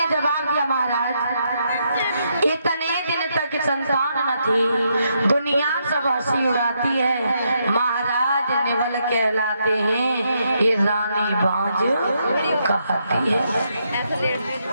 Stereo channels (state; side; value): inverted; both; correlation -0.78